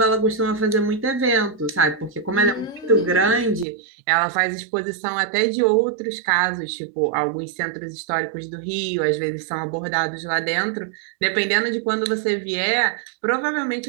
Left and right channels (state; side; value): drops out; left; at 3.7 s